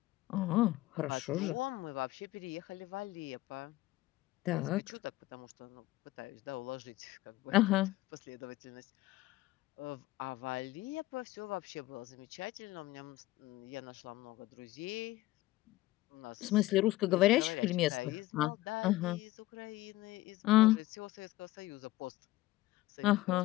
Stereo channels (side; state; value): right; quieter; 17.9 dB